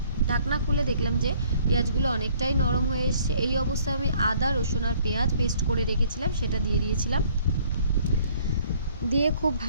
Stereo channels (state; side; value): inverted; both; correlation -0.60